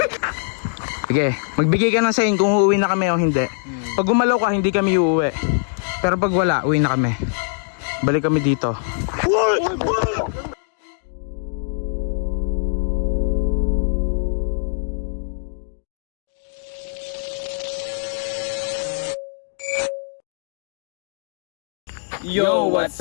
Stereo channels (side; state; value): right; silent; 64 dB below the other